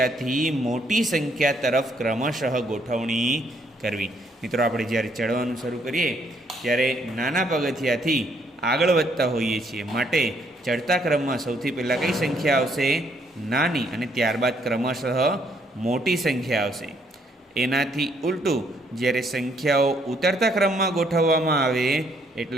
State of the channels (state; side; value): normal; both; correlation 0.69